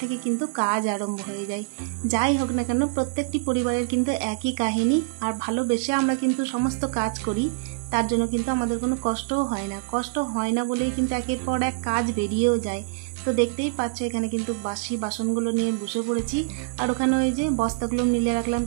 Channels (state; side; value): silent; left; 62 dB below the other